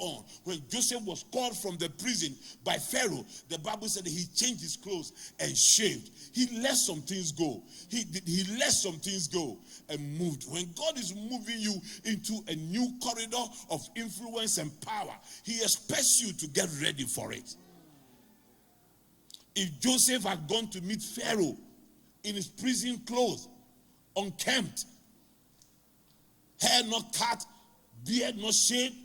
When Joseph was called from the prison by Pharaoh, the Bible said that he changed his clothes and shaved. He let some things go. He let some things go and moved. When God is moving you into a new corridor of influence and power, he expects you to get ready for it. If Joseph had gone to meet Pharaoh in his prison clothes, unkempt, hair not cut, beard not shaved,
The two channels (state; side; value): identical; both; correlation 1.00